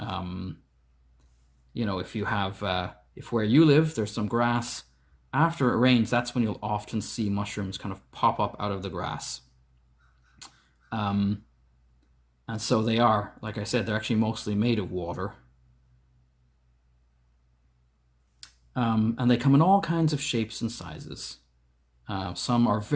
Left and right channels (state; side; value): identical; both; correlation 1.00